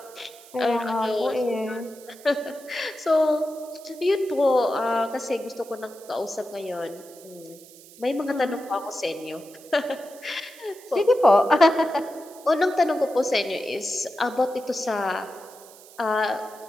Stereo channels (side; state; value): right; noise; hiss, 21 dB below the sound